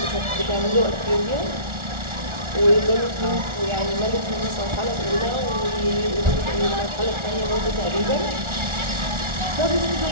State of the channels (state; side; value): late; left; 1.4 ms